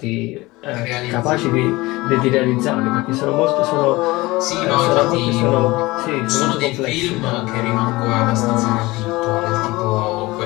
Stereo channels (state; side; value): quieter; right; 20.9 dB